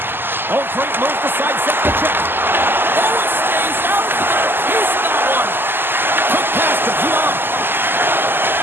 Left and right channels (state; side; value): late; left; 0.098 ms